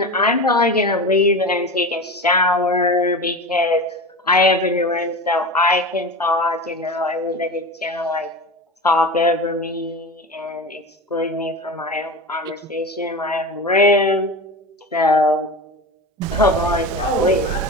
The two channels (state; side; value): normal; both; correlation 0.28